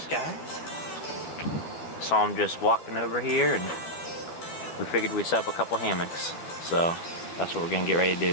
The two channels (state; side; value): late; right; 12 ms